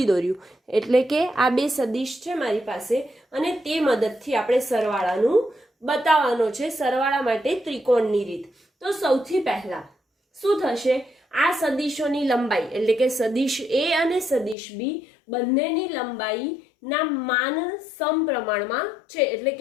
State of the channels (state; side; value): drops out; right; at 14.6 s